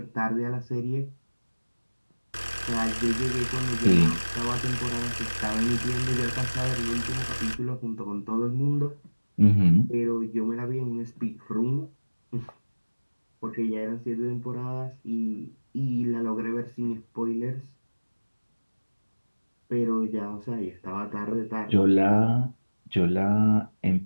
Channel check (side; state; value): both; inverted; correlation -1.00